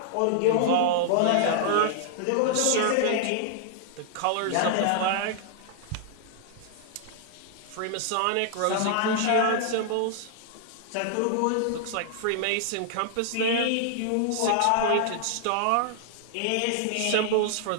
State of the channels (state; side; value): different; both; correlation -0.01